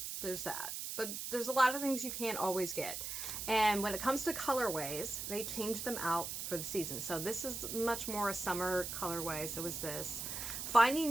There's that. But there's a lot of things you can't always get. And when it comes to colorways, they change them out for the season. So this is much more a summer colorway. So is this. Finding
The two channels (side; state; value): right; noise; hiss, 5 dB below the sound